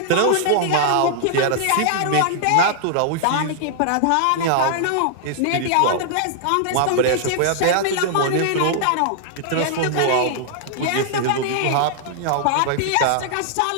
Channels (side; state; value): both; different; correlation -0.01